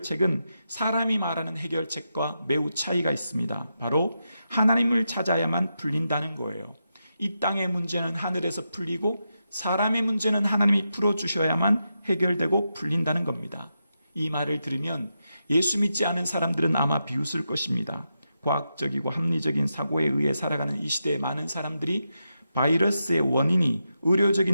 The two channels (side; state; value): both; inverted; correlation -0.87